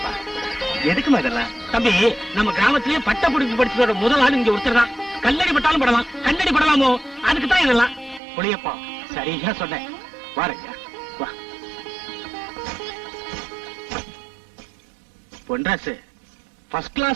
எதுக்குமா இதெல்லாம்? தம்பி, நம்ம கிராமத்திலேயே பட்ட படிப்பு படிச்சதோட முதல் ஆள் இங்க ஒருத்தர் தான். கல்லடி பட்டாலும் படலாம், கண்ணடி படலாமோ, அதுக்கு தான் இதெல்லாம். புளியப்பா சரியா சொன்னேன். வாரங்க வா. பொன்ராசு, ஃபர்ஸ்ட்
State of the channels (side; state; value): left; drops out; at 8.2 s